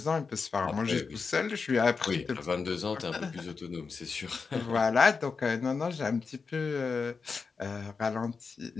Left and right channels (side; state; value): right; quieter; 5.0 dB